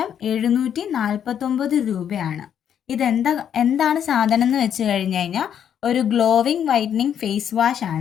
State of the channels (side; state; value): right; quieter; 9.0 dB